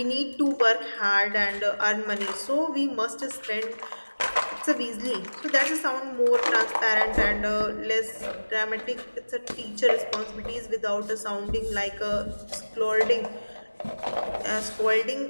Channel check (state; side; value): inverted; both; correlation -1.00